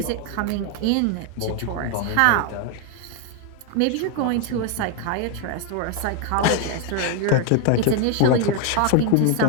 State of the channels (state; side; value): different; both; correlation 0.01